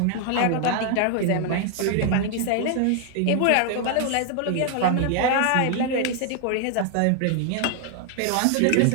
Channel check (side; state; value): both; different; correlation 0.00